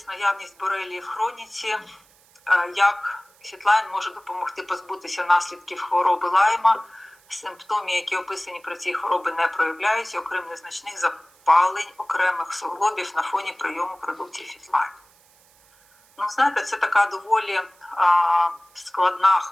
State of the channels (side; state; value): right; noise; hiss, 30 dB below the sound